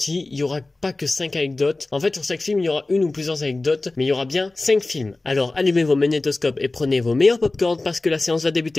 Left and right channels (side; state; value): right; quieter; 3.1 dB